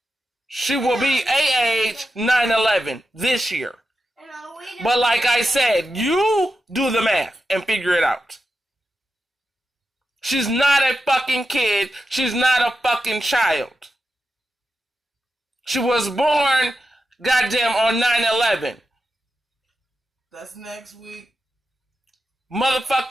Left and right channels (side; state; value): both; normal; correlation 0.90